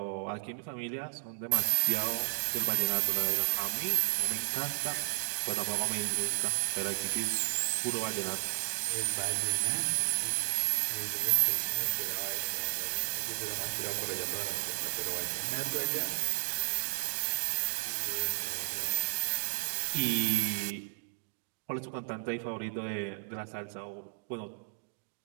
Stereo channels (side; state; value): left; silent; digital silence